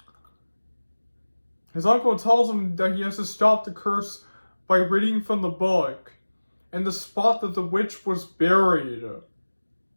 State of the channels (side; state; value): both; inverted; correlation -1.00